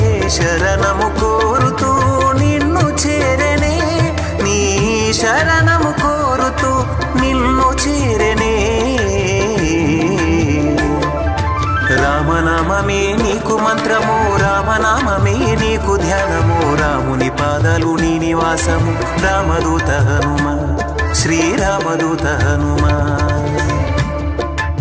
శరణము కోరుతూ నిన్ను చేరనే, నీ శరణము కోరుతూ నిన్ను చేరనే. రామనామమే నీకు మంత్రము, రామనామమే నీకు ధ్యానము, రాముని పాదాలు నీ నివాసము, రామదూత హనుమ, శ్రీరామదూత హనుమ.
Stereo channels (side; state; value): both; identical; correlation 1.00